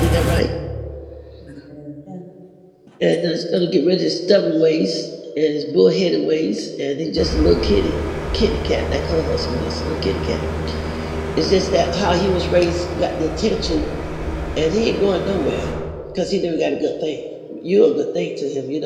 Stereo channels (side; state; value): both; identical; correlation 1.00